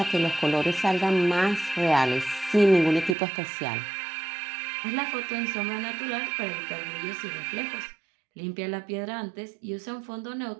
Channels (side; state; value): left; drops out; at 3.2 s